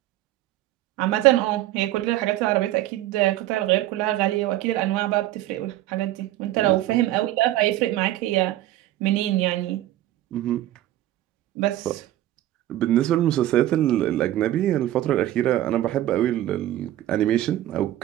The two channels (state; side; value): quieter; left; 14.3 dB